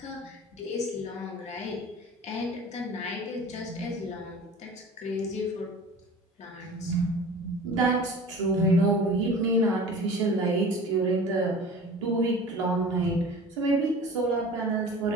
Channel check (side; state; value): both; normal; correlation 0.40